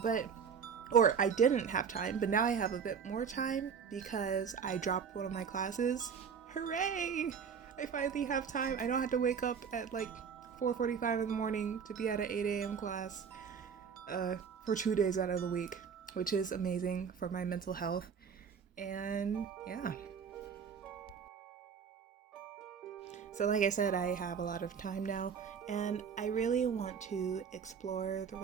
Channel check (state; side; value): quieter; left; 6.7 dB